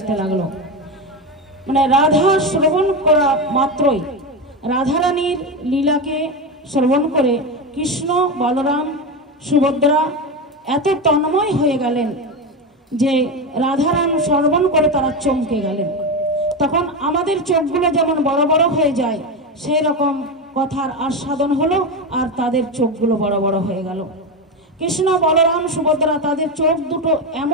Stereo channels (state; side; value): normal; both; correlation 0.16